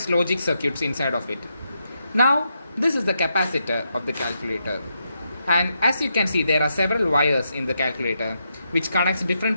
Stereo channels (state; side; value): inverted; both; correlation -0.82